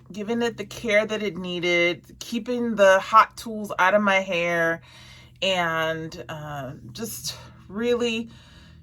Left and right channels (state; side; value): identical; both; correlation 1.00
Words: giving it the care that it needed, keeping the hot tools out of my hair, and just really